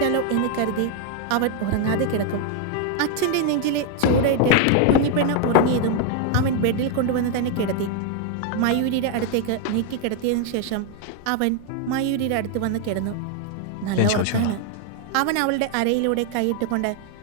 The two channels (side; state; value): both; different; correlation 0.00